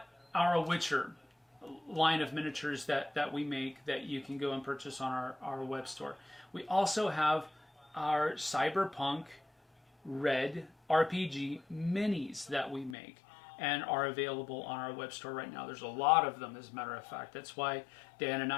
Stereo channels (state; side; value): drops out; right; at 13.0 s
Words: our Witcher line of miniatures that we make that you can go and purchase on our web store. We also have our Cyberpunk RED RPG minis that we make and are available on our web store right now. There's a lot of them, as a matter of fact. That's why Dan and